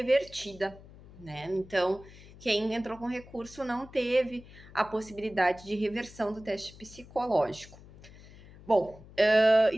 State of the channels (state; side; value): noise; left; hum, 20 dB below the sound